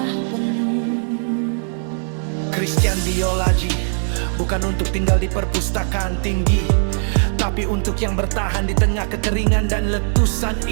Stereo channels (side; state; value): left; silent; 63 dB below the other